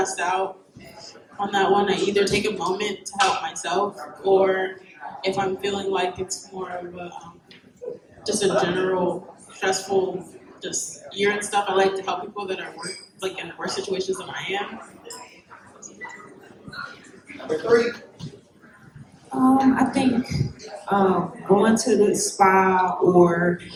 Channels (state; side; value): identical; both; correlation 1.00